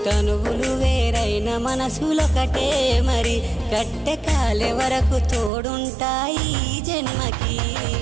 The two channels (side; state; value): left; drops out; at 5.5 s